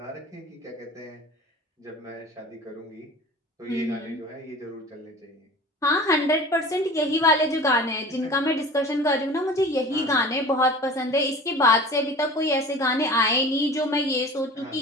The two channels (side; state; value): both; normal; correlation 0.40